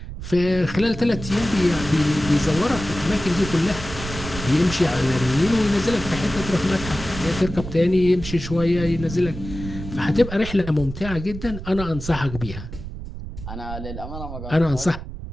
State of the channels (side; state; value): right; noise; rumble, 10 dB below the sound